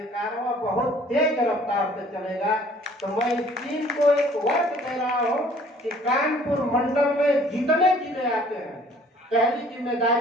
कारवां बहुत तेज रफ्तार से चलेगा। तो मैं इस टीम को एक वर्क दे रहा हूँ कि कानपुर मंडल में जितने जिले आते हैं, पहली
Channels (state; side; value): normal; both; correlation 0.55